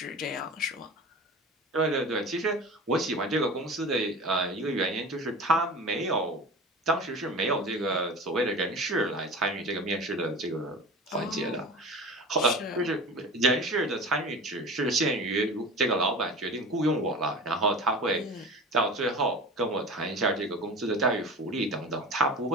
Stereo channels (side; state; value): both; normal; correlation 0.35